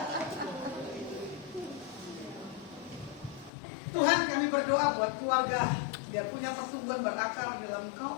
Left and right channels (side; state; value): right; drops out; at 3.5 s